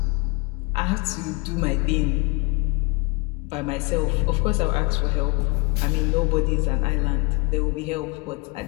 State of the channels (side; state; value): right; quieter; 28.0 dB